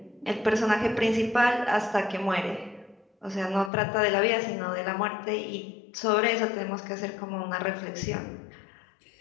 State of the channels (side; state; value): right; drops out; at 3.7 s